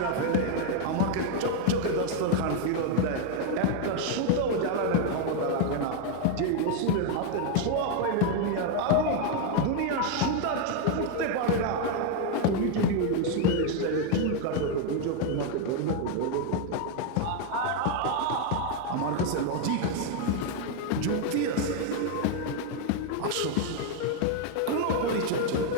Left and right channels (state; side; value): different; both; correlation 0.01